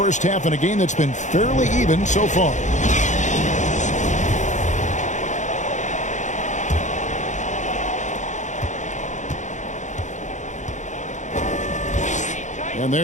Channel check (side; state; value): right; late; 0.35 ms